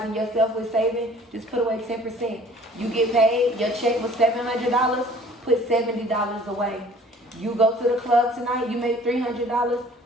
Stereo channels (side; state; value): both; normal; correlation 0.52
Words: yourself with saving, just put away 10%. You get paid, your check was $700, put $70 away. You go to the club tonight, you make $300,